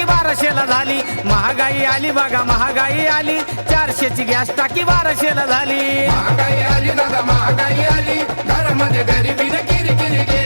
1200ला झाली. महागाई आली बघा महागाई आली, 400ची गॅस टाकी 1200ला झाली. महागाई आली दादा महागाई आली, घरामध्ये गरिबीने किरकिरी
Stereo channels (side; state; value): both; inverted; correlation -1.00